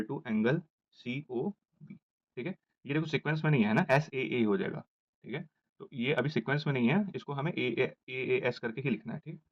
to angle COB, ठीक है। ये देखो सीक्वेंस में नहीं है ना, SAA हो जाएगा, ठीक है। तो ये अभी सीक्वेंस में नहीं है, इसको हमें AAS करके ही लिखना है, ठीक।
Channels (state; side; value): identical; both; correlation 1.00